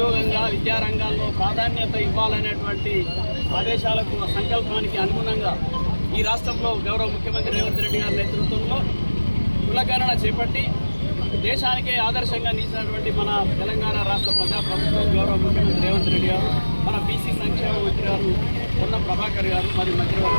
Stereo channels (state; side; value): inverted; both; correlation -1.00